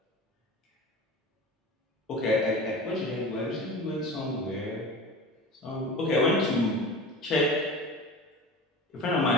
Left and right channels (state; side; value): normal; both; correlation 0.35